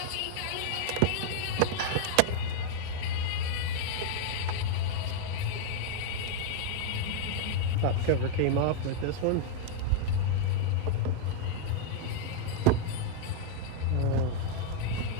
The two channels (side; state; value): both; different; correlation 0.00